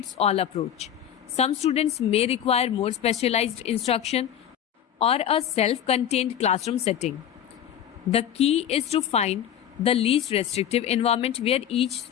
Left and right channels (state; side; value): quieter; right; 9.8 dB